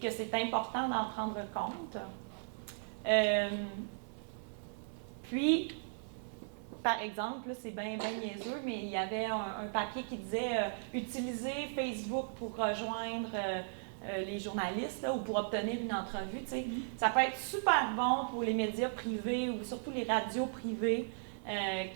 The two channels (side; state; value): left; silent; 53 dB below the other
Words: c'est important d'en prendre compte. Puis, par exemple, là, c'est bien niaiseux, mais il y avait un papier qui disait utiliser Facebook pour rejoindre les journalistes là, ou pour obtenir une entrevue. Tu sais. Ça peut être super bon pour les médias privés ou surtout les radios privées